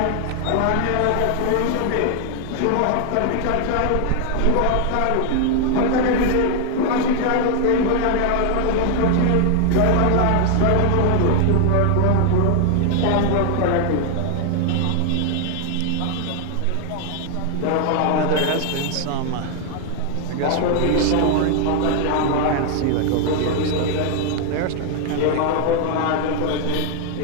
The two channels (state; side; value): different; both; correlation 0.00